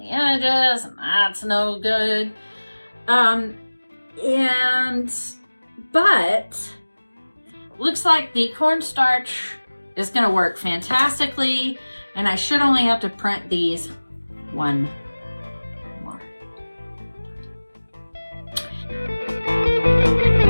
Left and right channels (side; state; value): both; inverted; correlation -1.00